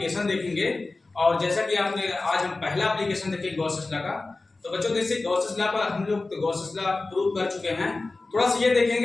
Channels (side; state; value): right; quieter; 3.4 dB